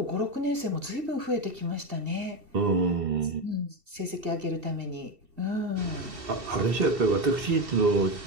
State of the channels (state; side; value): late; left; 2.7 ms